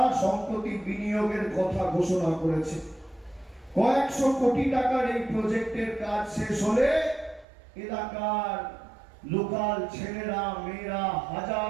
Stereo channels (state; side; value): drops out; left; at 7.5 s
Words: সম্প্রতি বিনিয়োগের কথা ঘোষণা করেছে। কয়েকশো কোটি টাকার এই প্রজেক্টের কাজ শেষ হলে এলাকার লোকাল ছেলেরা, মেয়েরা,